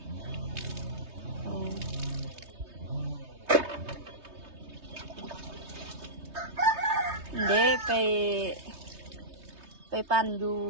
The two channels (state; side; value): late; left; 3.2 ms